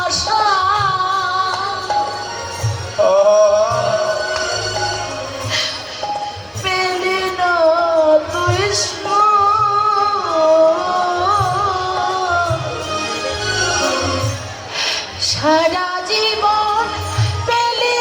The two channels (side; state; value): both; identical; correlation 1.00